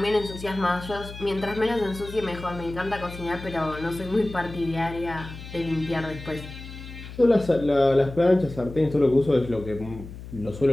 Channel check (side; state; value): left; noise; hum, 13 dB below the sound